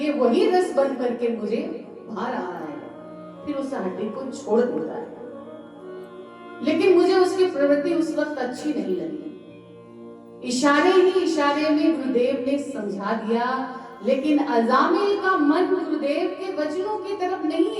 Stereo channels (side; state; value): both; identical; correlation 1.00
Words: वही रस बन करके मुझे भा रहा है। फिर उस हड्डी को छोड़ देता है। लेकिन मुझे उसकी प्रवृत्ति उस वक्त अच्छी नहीं लगी। इशारे ही इशारे में गुरुदेव ने समझा दिया, लेकिन अजामिल का मन गुरुदेव के वचनों की